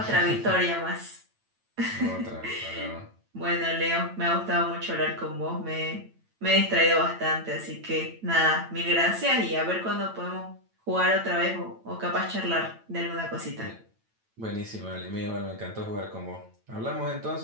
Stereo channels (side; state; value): left; late; 9.0 ms